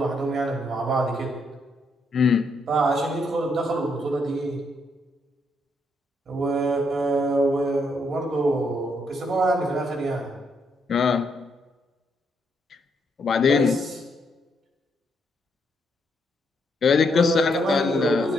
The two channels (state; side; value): normal; both; correlation 0.76